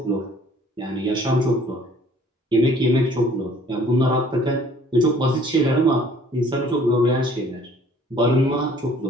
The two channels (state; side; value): normal; both; correlation 0.56